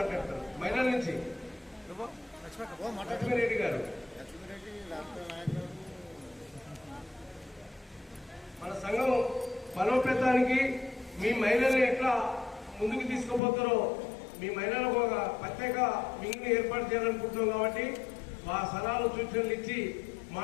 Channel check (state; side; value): drops out; right; at 13.4 s